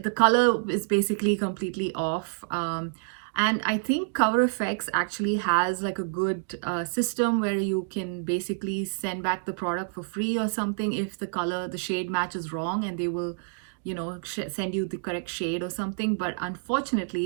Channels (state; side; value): silent; left; digital silence